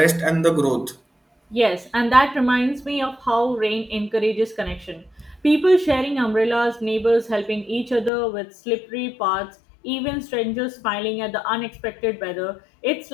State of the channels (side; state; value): right; drops out; at 8.1 s